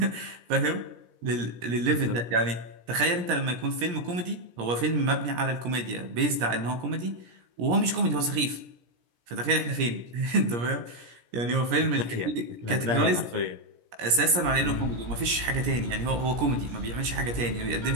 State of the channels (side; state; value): left; late; 17 ms